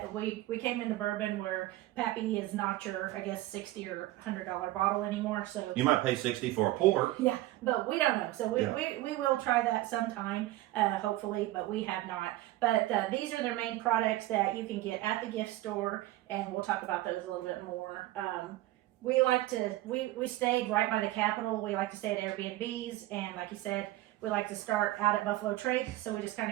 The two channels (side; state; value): left; quieter; 16.7 dB